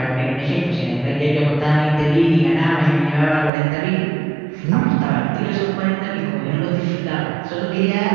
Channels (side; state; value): left; drops out; at 3.5 s